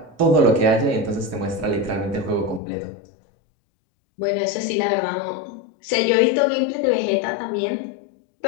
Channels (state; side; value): drops out; right; at 2.6 s